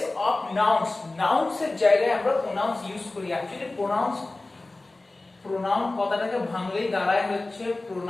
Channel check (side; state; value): right; quieter; 3.0 dB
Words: of nouns. Nouns এর জায়গায় আমরা pronouns ইউজ করি. Actually pronoun কথাটাকে ভাঙলেই দাঁড়ায় হচ্ছে